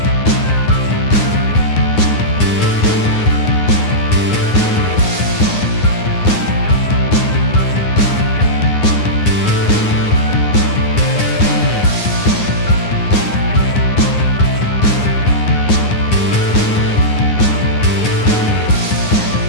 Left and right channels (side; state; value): right; late; 9.7 ms